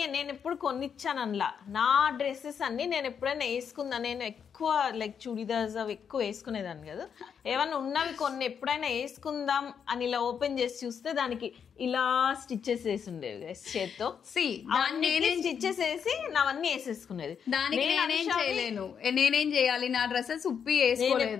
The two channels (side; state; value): right; quieter; 7.3 dB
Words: నేను ఎప్పుడు కొనిచ్చాను అనలా. నా డ్రెస్సెస్ అన్ని నేను ఎప్పుడైనా వేసుకుందా, నేను ఎక్కువ లైక్ చుడిదార్స్ అవి ఎక్కువ వేసుకునేదాన్ని కదా. ఏమన్నా ఉన్నవి కొన్ని ఎప్పుడైనా వేసుకుందాం అని ఇలా ఓపెన్ చేసి చూస్తే దానికి ఇలా స్టిచ్చెస్ వేసి ఉండేవి చేత్తో. స్టిచ్చెస్ వేసి నావన్నీ వేసేసుకునేది. దానికి నేనేం చేయాలి, నా డ్రెస్సెస్ ఉప్పి